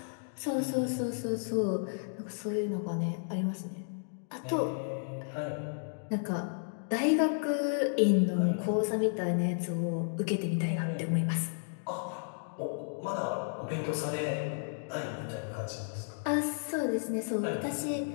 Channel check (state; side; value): silent; right; digital silence